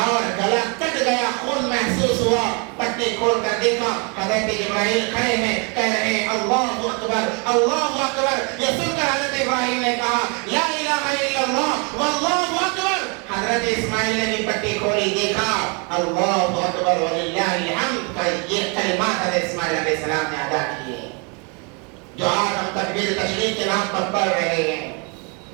گلا کٹ گیا، خون محسوس ہوا، پٹی کھول کر دیکھا حضرت جبرائیل کھڑے ہیں، کہہ رہے ہیں اللہ اکبر اللہ اکبر۔ یہ سن کر حضرت ابراہیم نے کہا لا الہ الا اللہ واللہ اکبر۔ حضرت اسماعیل نے بھی پٹی کھولی، دیکھا اللہ اکبر وللہ الحمد۔ یہ کلمات حضرت اسماعیل علیہ السلام نے ادا کیے جو آج ہم تکبیر تشریف کے نام پر پڑھ رہے ہیں۔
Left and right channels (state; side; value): quieter; left; 33.7 dB